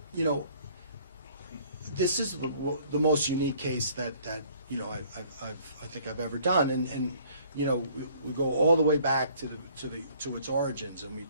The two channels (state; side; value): inverted; both; correlation -0.58